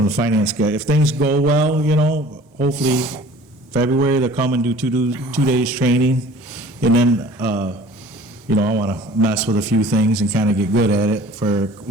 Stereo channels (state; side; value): normal; both; correlation 0.47